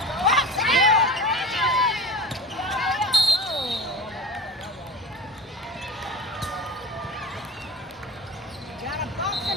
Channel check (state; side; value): normal; both; correlation 0.35